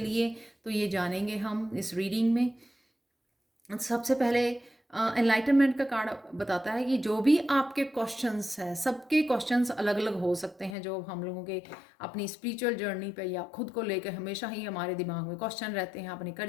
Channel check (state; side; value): drops out; right; at 10.8 s